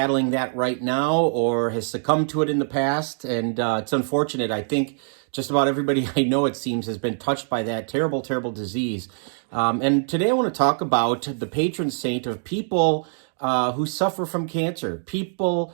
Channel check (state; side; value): silent; left; digital silence